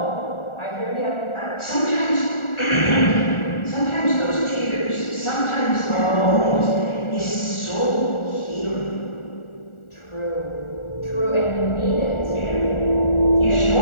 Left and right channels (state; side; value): late; right; 1.4 ms